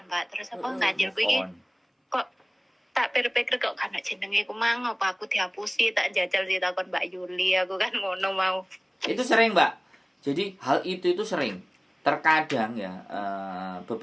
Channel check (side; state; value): both; identical; correlation 1.00